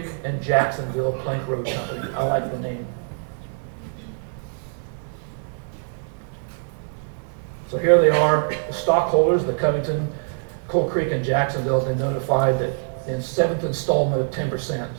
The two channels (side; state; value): left; silent; digital silence